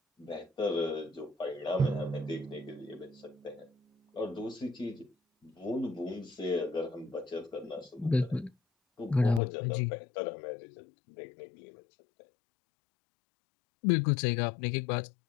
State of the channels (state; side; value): drops out; right; at 9.4 s